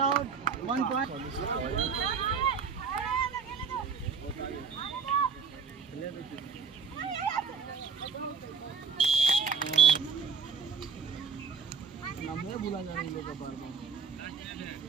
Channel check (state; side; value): quieter; left; 5.8 dB